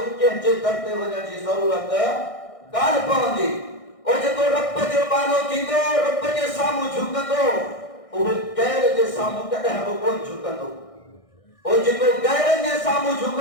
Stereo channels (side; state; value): right; late; 1.6 ms